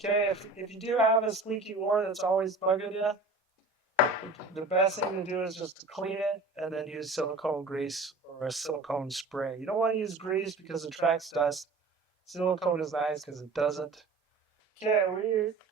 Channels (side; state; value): left; quieter; 3.3 dB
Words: Okay, if you do have a squeaky oar that's always bugging you, the best thing to do is just to clean it and then use silicone grease or a silicone spray. You don't want to use grease because it attracts dust. Silicone is nice because it doesn't. Okay, we're